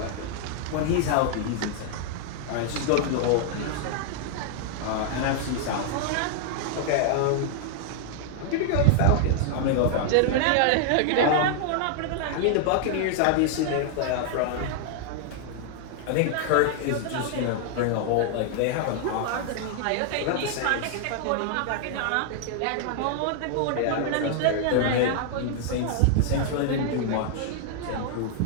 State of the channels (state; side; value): different; both; correlation 0.00